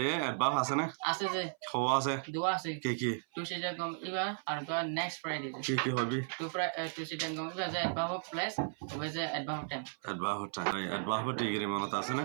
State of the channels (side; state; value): left; silent; 54 dB below the other